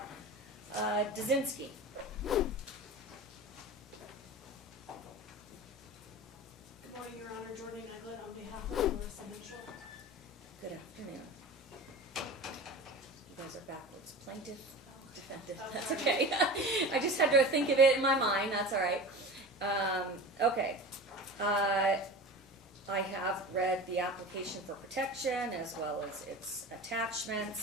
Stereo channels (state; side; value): normal; both; correlation 0.34